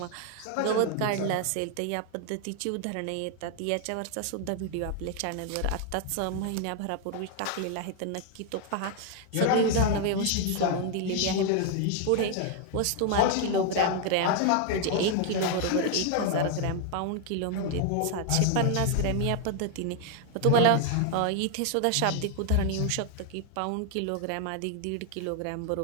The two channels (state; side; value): different; both; correlation 0.00